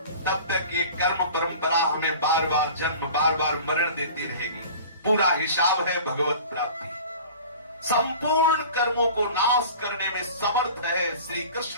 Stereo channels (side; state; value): both; inverted; correlation -0.41